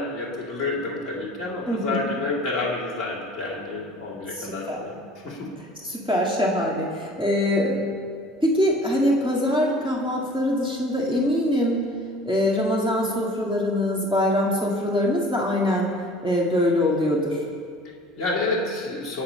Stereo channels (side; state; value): both; normal; correlation 0.47